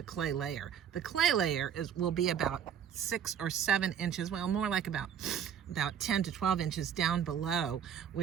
clay layer. The clay layer will be about 6 or 7 inches, well, more like about 10 to 12 inches down below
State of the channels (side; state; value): left; quieter; 8.7 dB